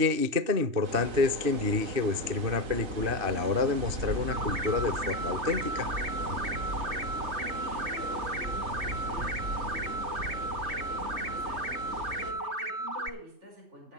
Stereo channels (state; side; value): late; left; 3.2 ms